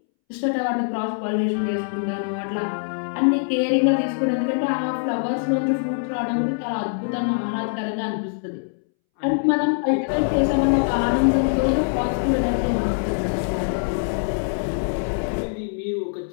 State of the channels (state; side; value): silent; right; 63 dB below the other